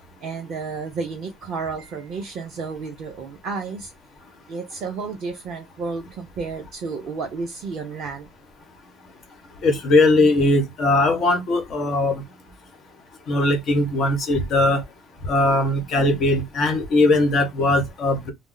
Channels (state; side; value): normal; both; correlation 0.61